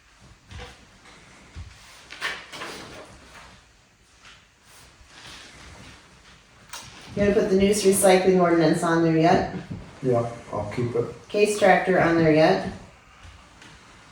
You gonna put the news recycling ordinance on there yet? Yeah, I'll keep it. Case tractor on there yet?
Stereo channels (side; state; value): both; identical; correlation 1.00